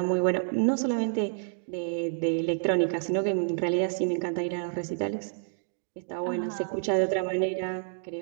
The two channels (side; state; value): left; silent; digital silence